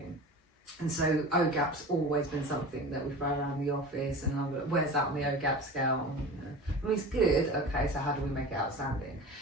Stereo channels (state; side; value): normal; both; correlation 0.34